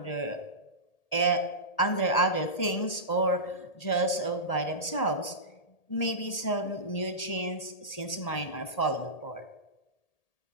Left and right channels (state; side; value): late; right; 1.8 ms